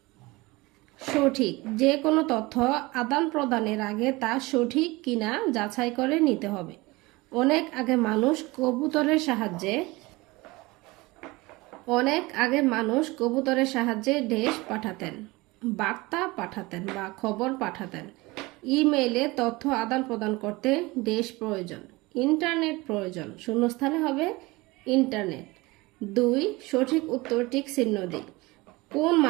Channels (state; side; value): quieter; left; 22.4 dB